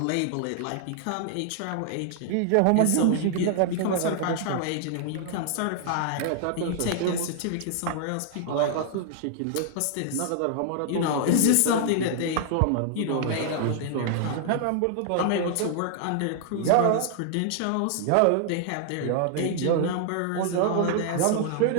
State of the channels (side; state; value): both; different; correlation -0.01